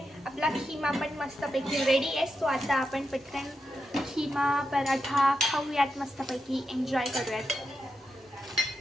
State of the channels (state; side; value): normal; both; correlation 0.87